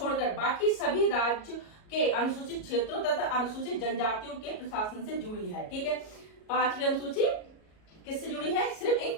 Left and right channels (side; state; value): right; late; 37 ms